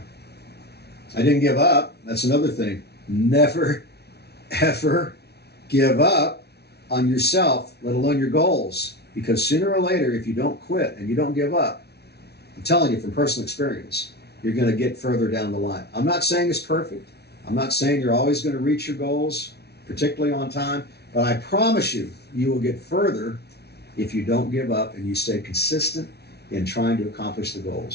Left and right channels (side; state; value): right; late; 0.48 ms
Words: I didn't give up. That's another thing. Never, ever give up on yourself, let alone your goals. Because sooner or later, if you don't quit and you don't give up, I'm telling you from personal experience, you're going to get further down the line. I'm not saying it's perfect. I'm not saying you're always going to reach your goals, particularly on time, but I promise you, you will get further if you don't give up and you stay consistent in trying to accomplish the